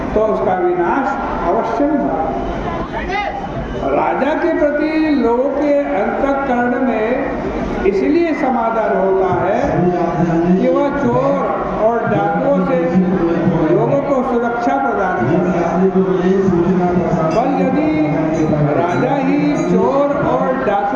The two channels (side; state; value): both; identical; correlation 1.00